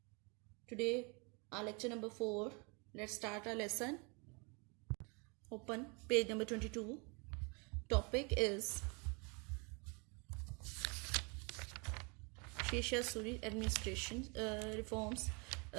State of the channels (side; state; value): left; quieter; 32.1 dB